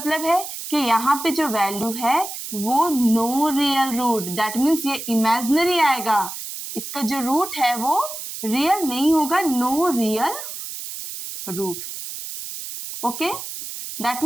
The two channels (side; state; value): right; noise; hiss, 9 dB below the sound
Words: है कि यहाँ पे जो वैल्यू है वो no real root, that means ये इमेजिनरी आएगा, इसका जो रूट है वो रियल नहीं होगा, no real root. Okay, that